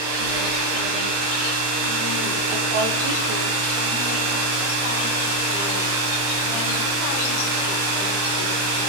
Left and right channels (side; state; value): left; late; 26 ms